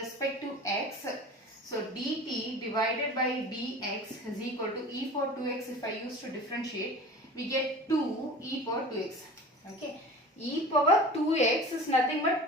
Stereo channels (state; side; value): normal; both; correlation 0.38